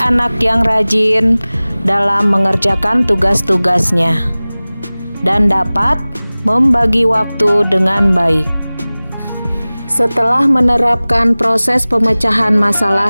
yang rajin dalam mengerjakan tugas-tugasnya dan dapat membagi waktu dengan baik. Setelah menerapkan proses pemecahan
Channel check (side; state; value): both; inverted; correlation -0.99